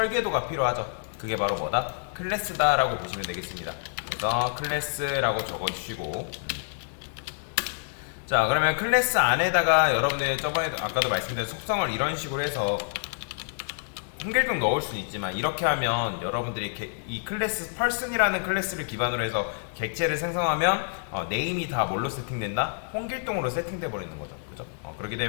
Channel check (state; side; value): silent; right; digital silence